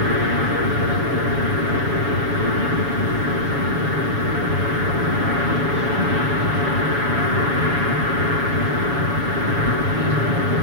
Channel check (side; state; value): left; late; 7.1 ms